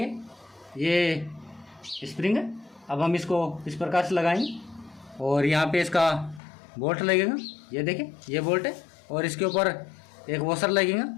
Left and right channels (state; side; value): drops out; right; at 6.4 s